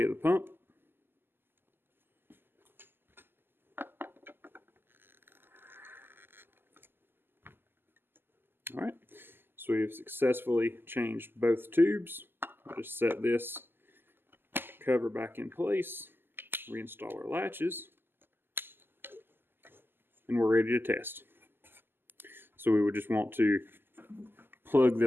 of the pump. All right, so we've successfully changed both tubes. I'll just set this cover back in place, reinstall our latches, and we're ready to test. So we would just want to plug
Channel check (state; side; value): late; left; 0.099 ms